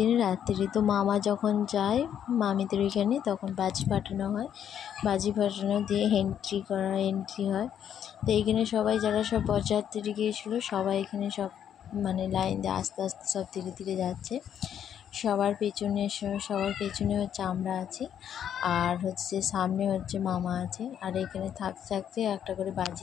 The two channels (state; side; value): quieter; right; 9.3 dB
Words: রাত্রি। তো মামা যখন যায় মামিদের ওইখানে তখন বাজি ফাটানো হয়, বাজি ফাটানো দিয়ে এন্ট্রি হয়। তো এইখানে সবাই যারা সব বরযাত্রী গিয়েছিলো সবাই এখানে সব মানে লাইন দিয়ে আস্তে আস্তে সব ধীরে ধীরে যাচ্ছে। সবার পেছনে হচ্ছে আমরা আছি, আর হচ্ছে সামনে হচ্ছে মামা আছে। আর এখানে থাকতে থাকতে একটা করে